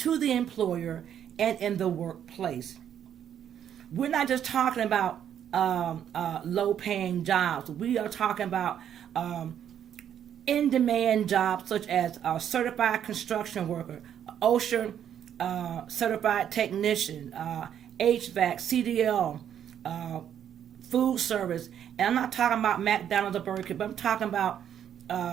the employer and in the workplace. We're not just talking about low-paying jobs. We are talking about in-demand jobs, such as a certified construction worker, OSHA certified technician, HVAC, CDL, food service. And I'm not talking about McDonald's or Burger King, but I'm talking about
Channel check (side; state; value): left; quieter; 9.5 dB